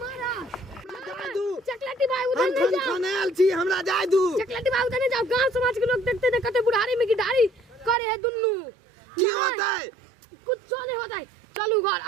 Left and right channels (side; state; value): left; drops out; at 8.0 s